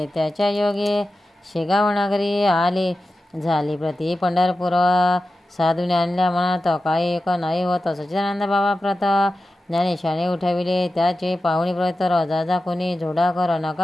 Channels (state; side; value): normal; both; correlation 0.93